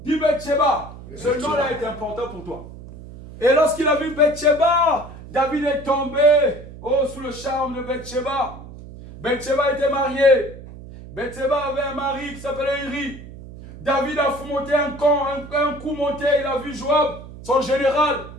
Dis Bathsheba, ce nom-là est important pour toi. Et lorsqu'il a vu Bathsheba, David est tombé sous le charme de Bathsheba. Bathsheba était mariée. Bathsheba avait un mari qui s'appelait Uri. David a monté un coup monté, il a vu Joab, son général.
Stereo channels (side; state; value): right; noise; hum, 15 dB below the sound